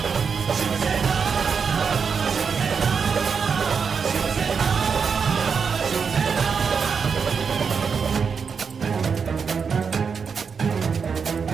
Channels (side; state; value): left; quieter; 6.0 dB